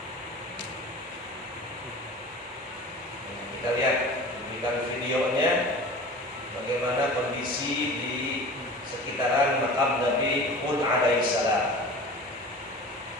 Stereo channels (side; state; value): both; normal; correlation 0.38